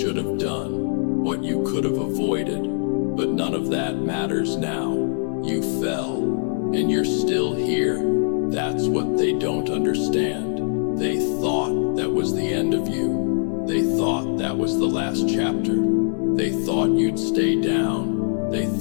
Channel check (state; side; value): silent; right; digital silence